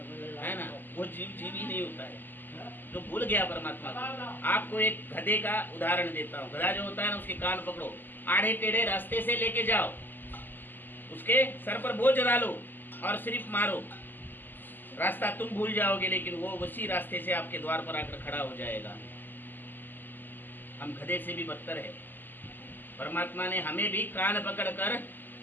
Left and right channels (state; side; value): late; right; 0.090 ms